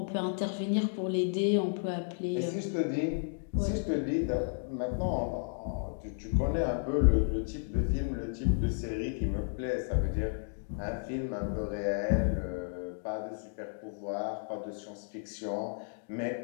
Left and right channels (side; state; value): right; silent; digital silence